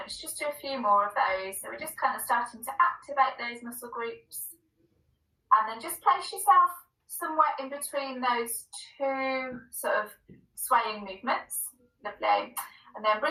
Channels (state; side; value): identical; both; correlation 1.00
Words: Let's just do a few more of those. So we're just kind of starting to activate those muscle groups. And then just place yourself somewhere in between those two sort of swaying movements. Lovely. And then